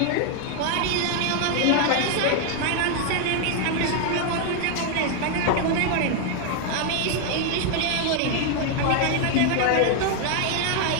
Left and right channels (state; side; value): different; both; correlation 0.00